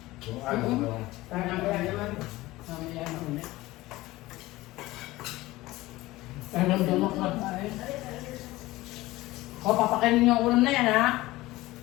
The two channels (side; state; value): right; quieter; 18.6 dB